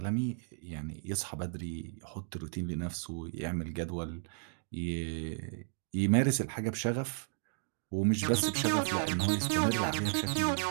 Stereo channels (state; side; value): silent; left; digital silence